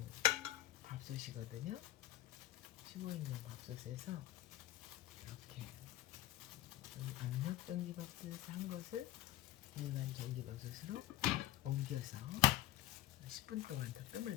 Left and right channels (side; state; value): right; quieter; 14.9 dB